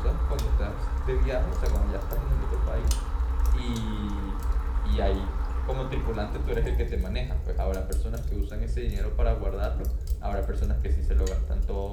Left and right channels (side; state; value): both; identical; correlation 1.00